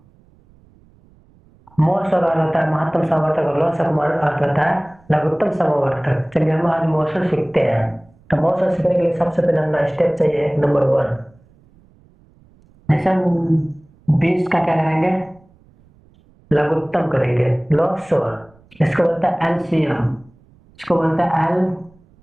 मोसो का अर्थ होता है महत्तम समवर्तक और लोसो का अर्थ होता है लघुत्तम समवर्तक। चलिए हम आज मोसो सीखते हैं। तो मोसो सीखने के लिए सबसे पहले हमें स्टेप चाहिए नंबर 1। जैसे हम 20 का क्या करेंगे, लघुत्तम करेंगे लोसो। इसको बोलता है एलसीएम, इसको बोलता है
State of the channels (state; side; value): noise; right; rumble, 30 dB below the sound